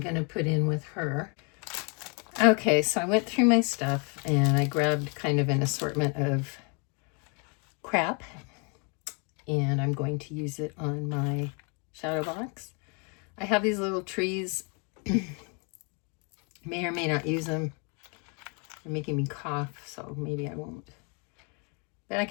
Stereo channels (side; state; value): right; quieter; 35.0 dB